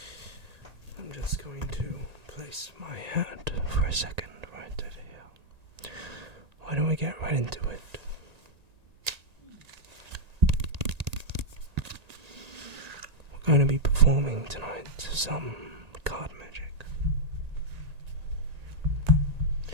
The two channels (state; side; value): late; left; 1.8 ms